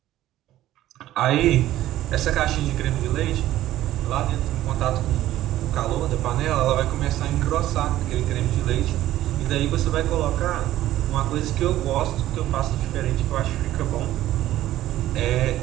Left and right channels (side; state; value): left; quieter; 14.1 dB